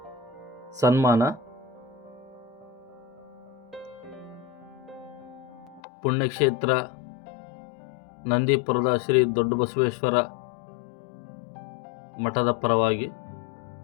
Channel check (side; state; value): right; drops out; at 5.8 s